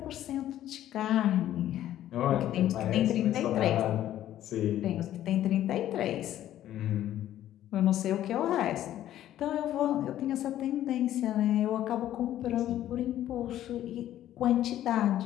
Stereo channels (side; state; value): right; quieter; 12.4 dB